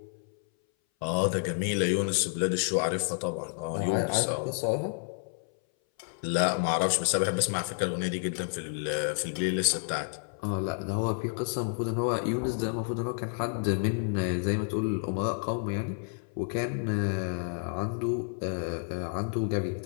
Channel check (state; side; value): silent; right; 58 dB below the other